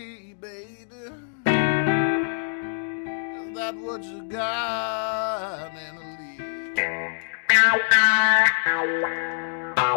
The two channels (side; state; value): right; silent; digital silence